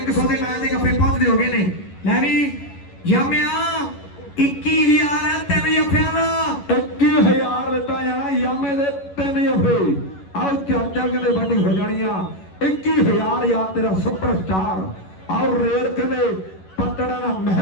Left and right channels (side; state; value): right; late; 11 ms